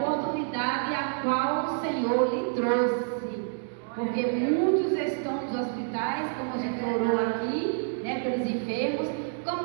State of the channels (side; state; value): left; silent; digital silence